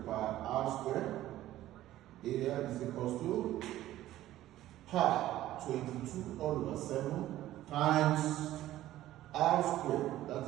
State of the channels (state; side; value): quieter; left; 14.3 dB